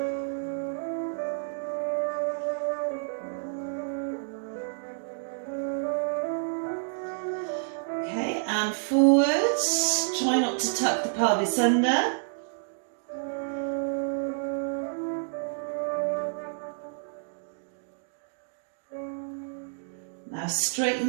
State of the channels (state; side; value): silent; left; digital silence